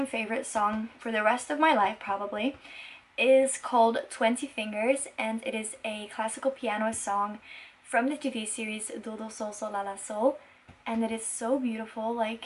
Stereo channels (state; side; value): identical; both; correlation 1.00